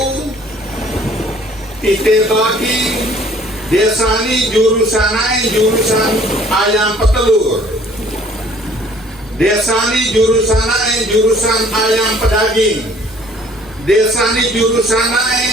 titik bagi desa ini jurusan ayam petelur, desa ini jurusan ayam pedaging, desa ini jurusan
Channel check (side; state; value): both; normal; correlation 0.56